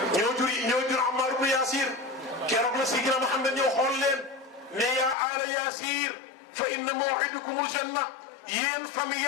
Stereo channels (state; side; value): drops out; right; at 5.2 s